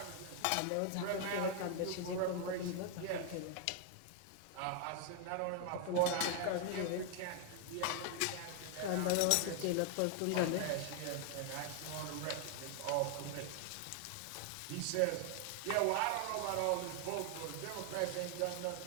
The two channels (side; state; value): both; different; correlation 0.00